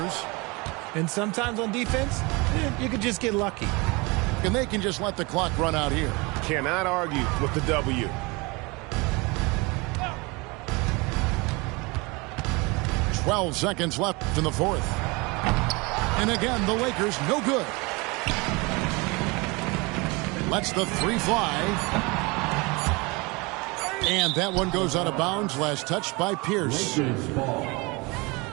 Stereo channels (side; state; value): left; quieter; 26.3 dB